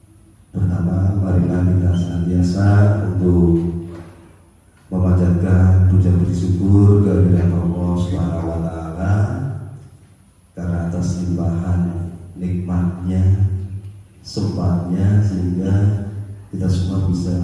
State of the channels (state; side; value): identical; both; correlation 1.00